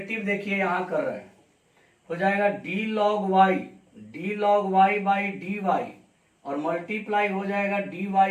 देखिए यहाँ कर रहे हैं, हो जाएगा d log y by dy और मल्टीप्लाई हो जाएगा dy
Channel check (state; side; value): identical; both; correlation 1.00